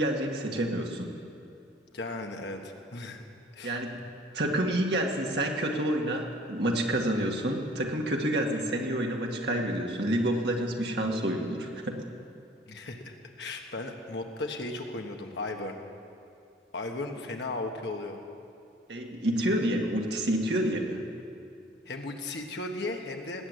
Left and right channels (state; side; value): normal; both; correlation 0.51